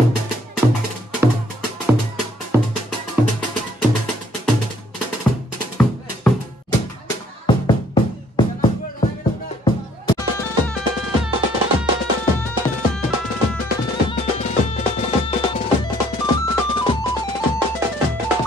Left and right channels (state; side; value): normal; both; correlation 0.63